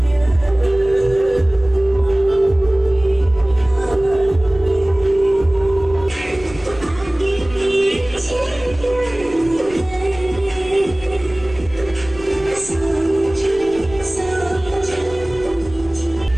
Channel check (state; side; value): noise; left; rumble, 17 dB below the sound